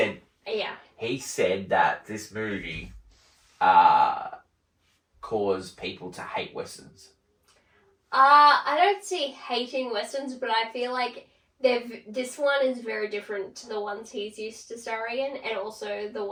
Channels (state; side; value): identical; both; correlation 1.00